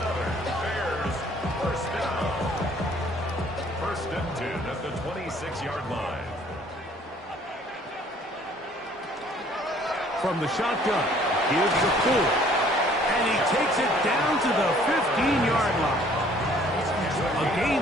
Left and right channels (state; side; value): normal; both; correlation 0.58